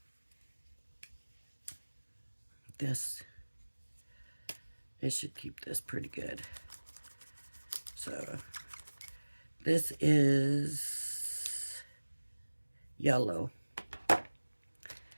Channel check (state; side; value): inverted; both; correlation -1.00